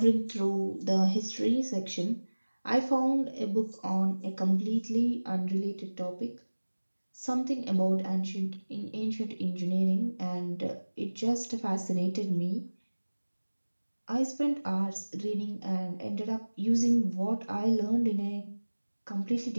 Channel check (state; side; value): inverted; both; correlation -1.00